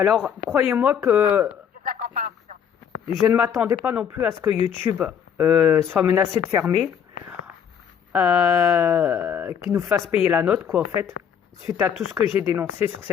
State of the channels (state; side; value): quieter; right; 8.1 dB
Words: croyez-moi que J'ai de la compréhension. je ne m'attendais pas non plus à ce que YouTube soit menacé de fermer, qu'il nous fasse payer la note, quoi, en fait, suite à tout ce que j'ai dénoncé sur